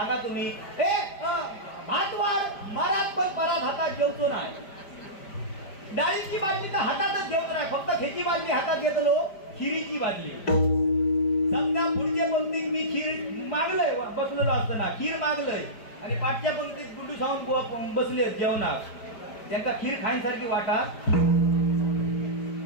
तुम्ही भात वाढ मारात पण परात हातात जेवतो नाही. डाळीची बाटली तर हातातच जेवतो नाही फक्त खेची बाटली हातात घेतलो खिरीची बाटली. समजा पुढच्या पंक्तीत मी खीर मागलंय बसलेलो असताना खीर मागलंय आणि पाठच्या पंक्तीत गुंडू सावून बसले जेवणात त्यांना खीर खाण्यासारखी वाटा.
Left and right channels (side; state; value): right; late; 5.0 ms